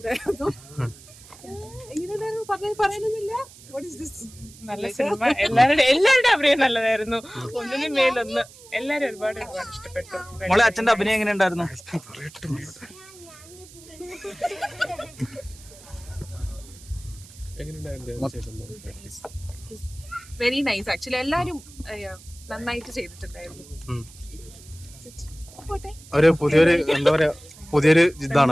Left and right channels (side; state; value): right; noise; hiss, 21 dB below the sound